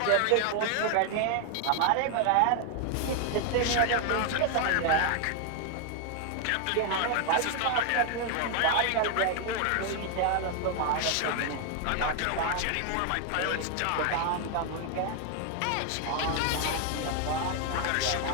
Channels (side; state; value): both; different; correlation 0.00